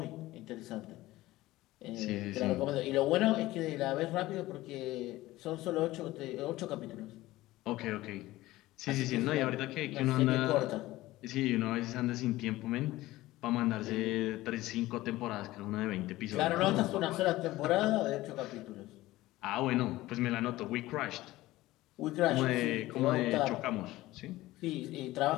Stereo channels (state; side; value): quieter; right; 17.4 dB